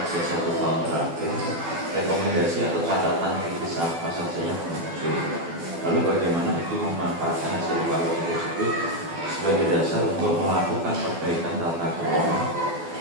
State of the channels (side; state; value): left; late; 12 ms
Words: 1 tahun terakhir, rekomendasi atau catatan kritis apa saja yang muncul? Lalu bagaimana Ibu memanfaatkan hasil evaluasi tersebut sebagai dasar untuk melakukan perbaikan tata kelola